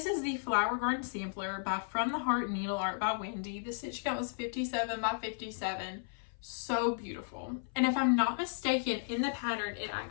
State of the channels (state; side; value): silent; right; 55 dB below the other